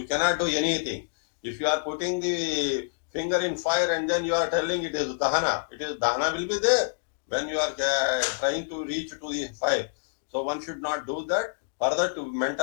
cannot do anything. If you are putting the finger in fire and then you are telling it is Dahana, Dahana will be there when you are trying to reach to the fire. So one should not do that. Further, to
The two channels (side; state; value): right; silent; digital silence